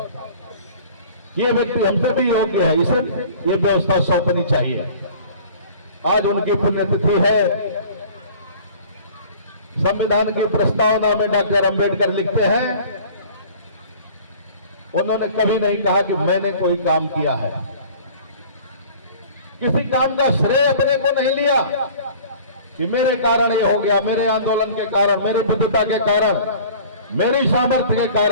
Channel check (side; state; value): both; inverted; correlation -0.46